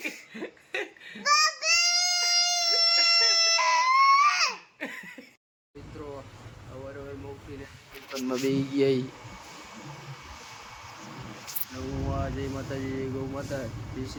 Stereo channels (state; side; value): identical; both; correlation 1.00